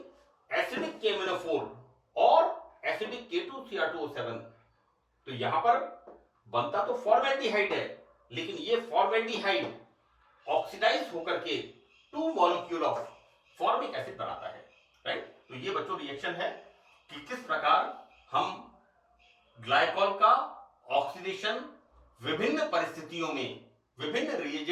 acidic K-MnO4 और acidic K2Cr2O7, तो यहां पर बनता तो फॉर्मेल्डिहाइड है, लेकिन ये फॉर्मेल्डिहाइड ऑक्सीडाइज होकर के 2 मॉलिक्यूल ऑफ फॉर्मिक एसिड बनाता है, राइट। तो ये बच्चों रिएक्शन है कि किस प्रकार हम ग्लाइकॉल का ऑक्सीडेशन विभिन्न परिस्थितियों में विभिन्न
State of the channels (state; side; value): identical; both; correlation 1.00